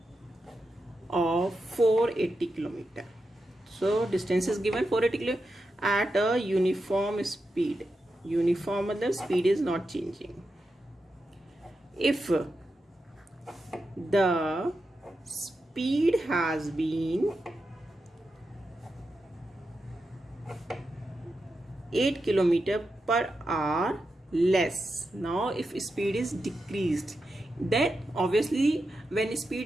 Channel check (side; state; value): both; normal; correlation 0.88